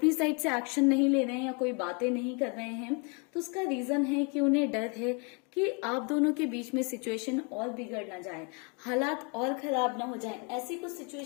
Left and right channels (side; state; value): right; quieter; 33.8 dB